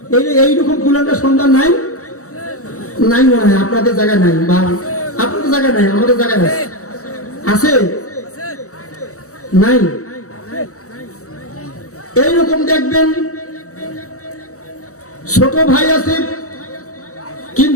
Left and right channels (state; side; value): late; right; 0.65 ms